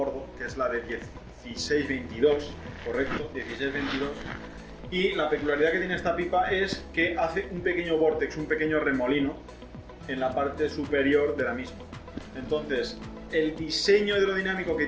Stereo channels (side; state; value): both; identical; correlation 1.00